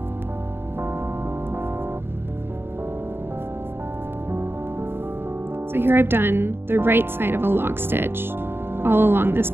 So here I've done the right side of a log stitch all along this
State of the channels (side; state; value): left; late; 0.11 ms